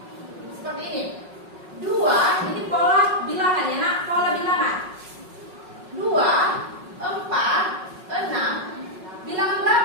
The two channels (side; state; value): left; late; 5.4 ms